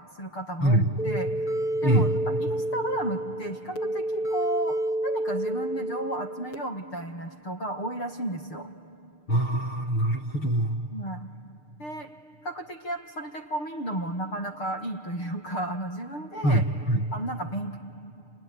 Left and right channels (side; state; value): right; late; 6.7 ms